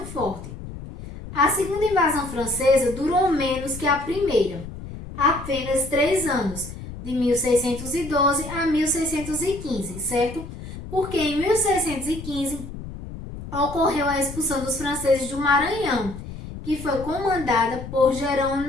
forte. A segunda invasão francesa durou menos que a primeira, apenas 3 anos, de 1612 a 1615, certo? Porque em 1615 ocorreu a expulsão dos franceses do Maranhão, que foi comandada por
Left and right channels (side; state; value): left; noise; rumble, 11 dB below the sound